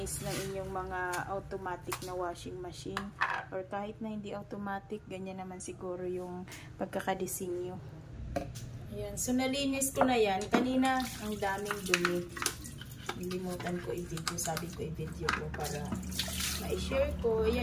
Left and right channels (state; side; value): identical; both; correlation 1.00